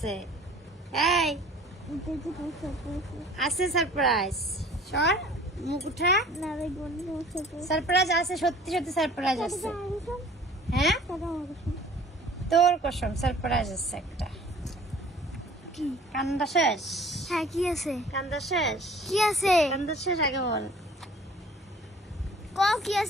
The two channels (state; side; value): normal; both; correlation 0.49